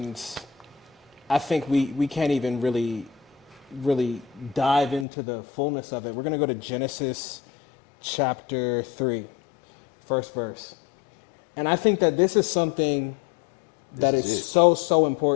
I think we can't even really dive into the fullness of it. We're gonna go to Genesis chapter 3, first verse. And I think that this is something that This is is it. so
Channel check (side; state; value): right; drops out; at 5.1 s